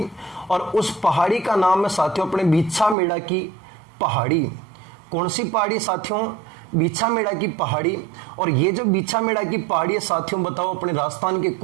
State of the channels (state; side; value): drops out; left; at 3.0 s